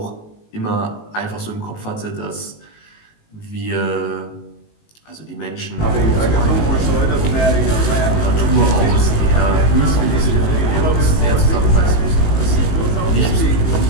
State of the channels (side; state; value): right; late; 19 ms